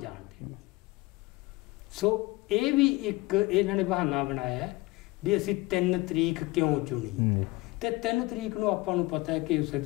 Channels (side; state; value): right; quieter; 21.7 dB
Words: ਦੇਣੀ। ਸੋ ਇਹ ਵੀ ਇੱਕ ਇਹਨਾਂ ਨੇ ਬਹਾਨਾ ਬਣਾਇਆ ਵੀ ਅਸੀਂ 3 ਤਰੀਕ ਕਿਉਂ ਚੁਣੀ। ਤੇ 3 ਤਰੀਕ ਨੂੰ ਆਪਾਂ ਨੂੰ ਪਤਾ ਹੈ ਕਿ ਉਸੇ